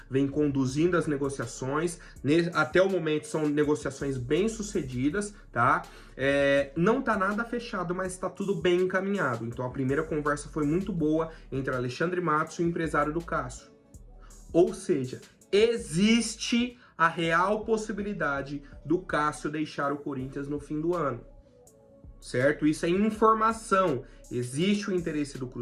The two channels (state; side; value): identical; both; correlation 1.00